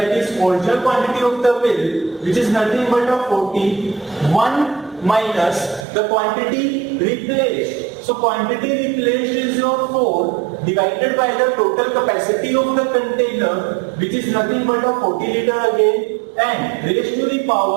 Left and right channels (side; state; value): left; drops out; at 5.9 s